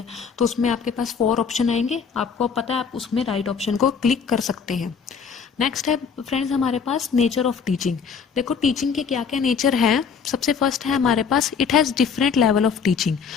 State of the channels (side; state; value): right; quieter; 6.2 dB